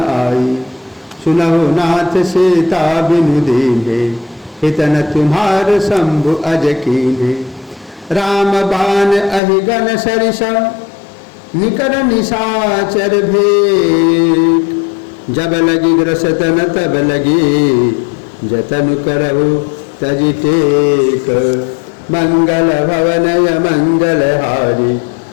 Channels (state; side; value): drops out; right; at 9.4 s